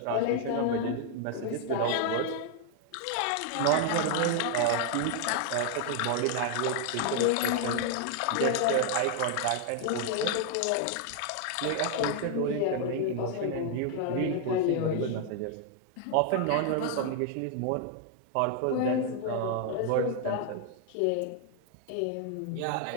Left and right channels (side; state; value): both; different; correlation 0.00